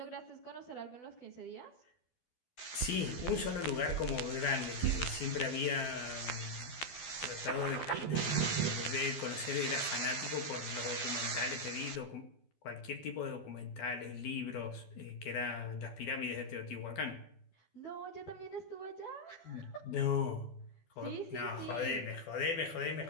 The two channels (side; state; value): right; late; 12 ms